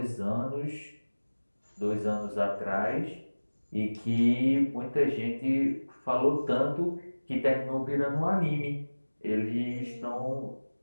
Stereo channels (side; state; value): both; inverted; correlation -1.00